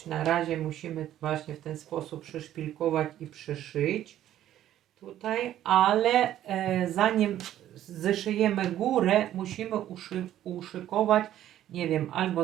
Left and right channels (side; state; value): left; quieter; 12.2 dB